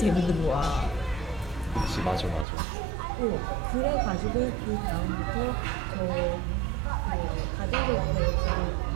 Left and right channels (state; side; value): drops out; left; at 2.5 s